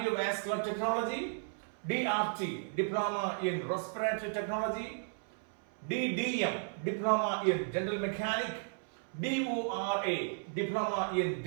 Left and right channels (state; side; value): silent; left; 55 dB below the other